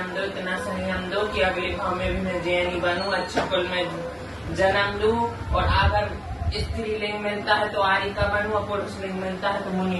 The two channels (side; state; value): both; identical; correlation 1.00